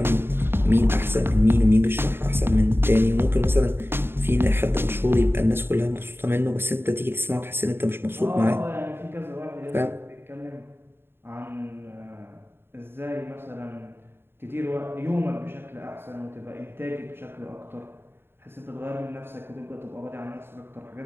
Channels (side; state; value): left; late; 0.11 ms